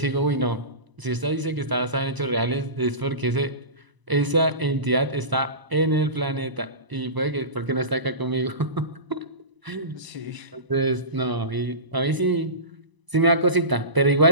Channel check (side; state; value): left; late; 1.0 ms